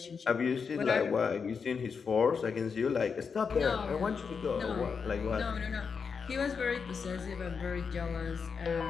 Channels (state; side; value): quieter; right; 5.8 dB